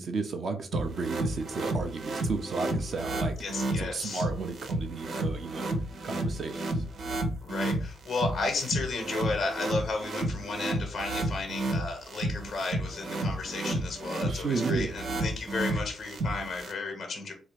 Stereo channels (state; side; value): normal; both; correlation 0.75